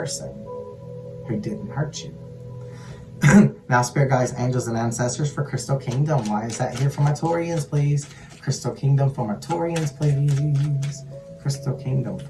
who didn't hurt you. Now, Spirit Guides, Angels, and Ancestors for Crystal Kingdom. Why is that here for my Taurians, please? Crystal Kingdom for my Taurians, please. Crystal Kingdom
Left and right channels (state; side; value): identical; both; correlation 1.00